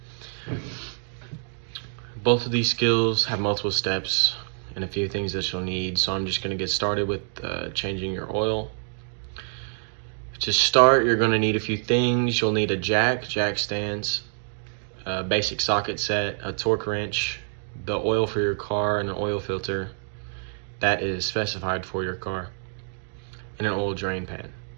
Both of these skills have multiple steps and a few things that you'll need, so I'm just going to get started with changing your oil. To start, you're going to need a few things. You'll need a jack stands, a basic socket set, a torque wrench, the oil for your car, and an oil filter that is specified for your car, and an oil drain pan.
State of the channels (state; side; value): silent; left; digital silence